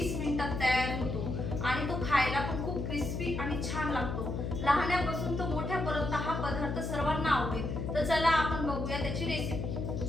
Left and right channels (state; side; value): noise; left; hum, 3 dB below the sound